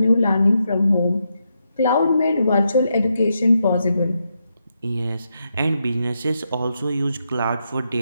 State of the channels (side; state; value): both; inverted; correlation -0.83